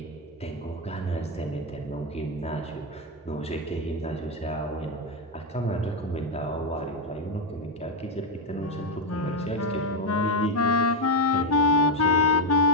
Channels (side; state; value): both; normal; correlation 0.05